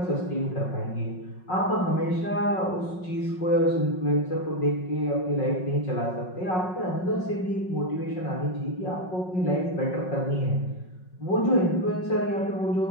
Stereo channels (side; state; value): right; late; 5.4 ms